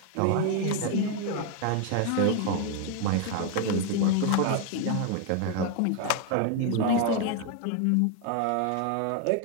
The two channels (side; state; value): both; different; correlation 0.01